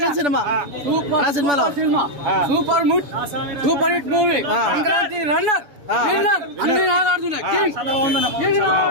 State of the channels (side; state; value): left; late; 7.0 ms